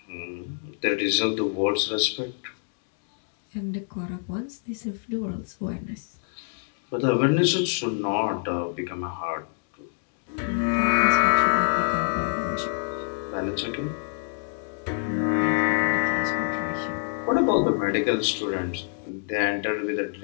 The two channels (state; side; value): silent; right; digital silence